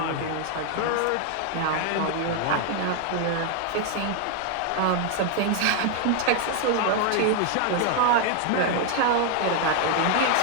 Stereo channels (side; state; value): both; different; correlation 0.00